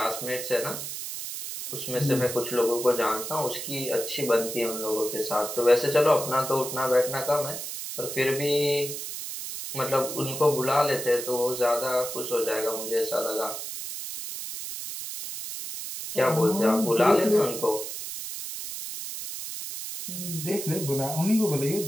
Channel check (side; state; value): right; noise; hiss, 7 dB below the sound